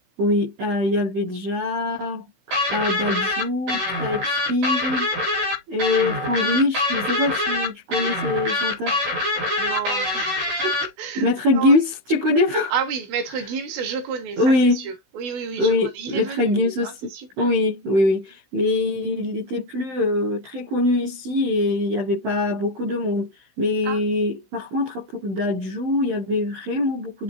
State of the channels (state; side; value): late; left; 16 ms